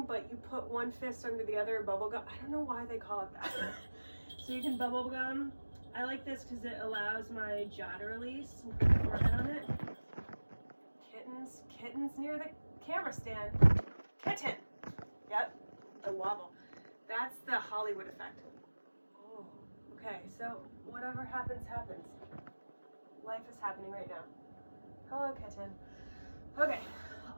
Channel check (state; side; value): inverted; both; correlation -1.00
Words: but you put one fist under the other, bubble gum. I don't know why they call it that. So you can bubble gum. I like this because it allows my jaw to release and put the forehead on it. Kittens near the camera stand. Kitten. Yep, the wobble. That's the Hollywood effect. Oh, okay, so whatever happens, happens. Life is happening right now. Hello, kitten. Okay,